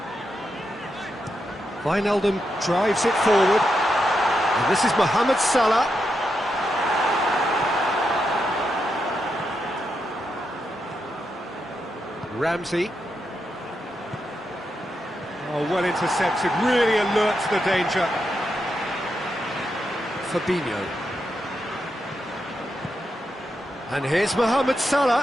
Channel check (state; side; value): normal; both; correlation 0.84